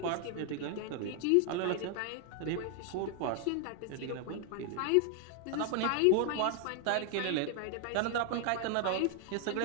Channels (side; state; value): both; different; correlation 0.00